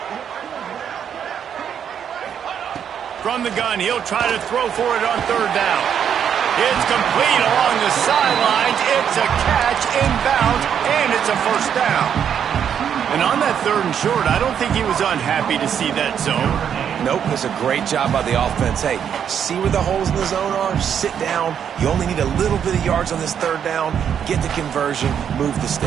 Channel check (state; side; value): quieter; left; 8.4 dB